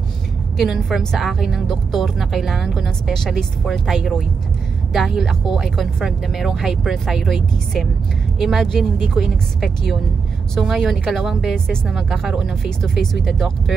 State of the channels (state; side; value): quieter; left; 5.4 dB